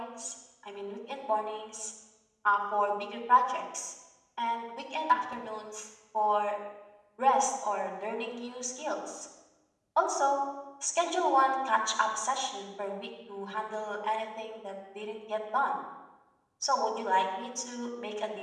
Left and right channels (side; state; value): both; identical; correlation 1.00